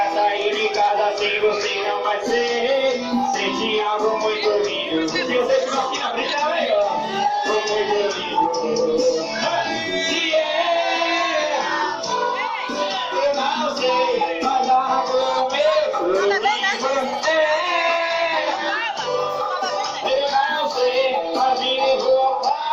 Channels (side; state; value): both; identical; correlation 1.00